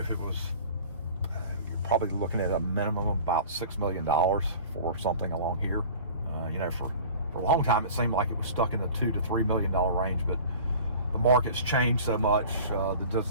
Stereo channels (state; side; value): inverted; both; correlation -0.41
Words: it was, you're probably looking at a minimum of about $6 million for something along here. You know, for a long time it seemed like it was stuck in the $2 to $3 million range, but the market's changed so much. The